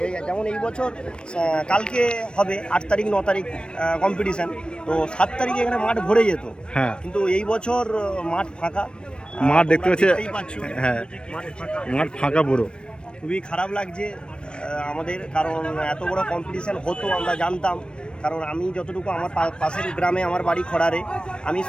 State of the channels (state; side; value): late; right; 0.055 ms